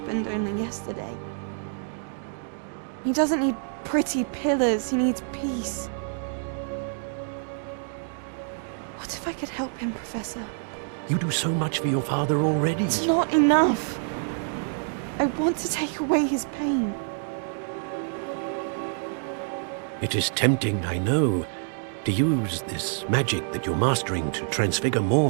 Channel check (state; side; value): silent; left; 60 dB below the other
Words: only yesterday. He doesn't need pretty pillars, he needs peace. What if I could help him, Professor? You do so much for your father already. It's not enough. I want to take away his pain. It is tempting, I know, to use this magic that you're mastering to transfigure